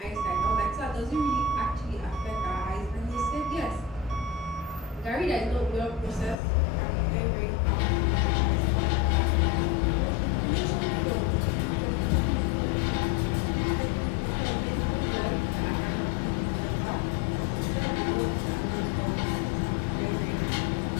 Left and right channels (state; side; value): drops out; right; at 6.4 s